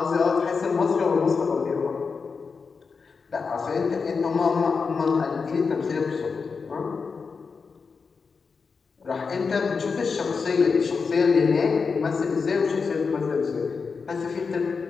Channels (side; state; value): right; quieter; 5.1 dB